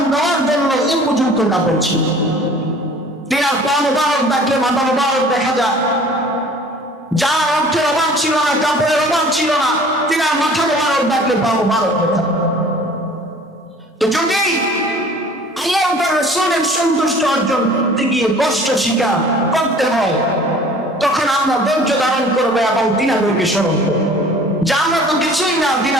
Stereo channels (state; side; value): normal; both; correlation 0.48